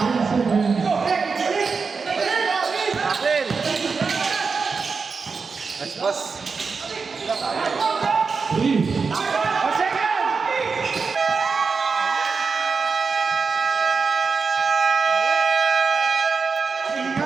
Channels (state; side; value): quieter; left; 4.9 dB